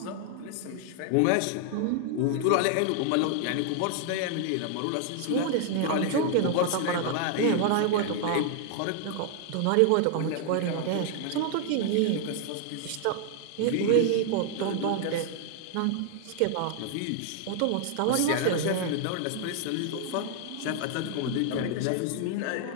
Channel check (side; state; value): both; different; correlation 0.00